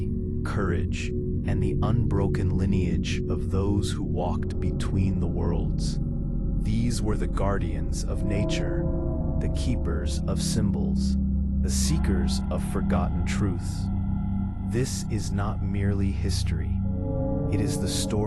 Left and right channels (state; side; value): identical; both; correlation 1.00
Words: courage, and the unbroken lineage of those who walked between the worlds. These were the guardians of nature, the keepers of symbols, the seekers of forgotten truths. This is not merely history. It is the